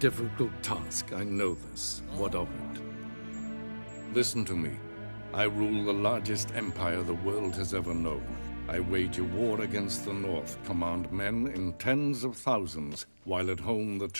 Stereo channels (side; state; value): both; inverted; correlation -1.00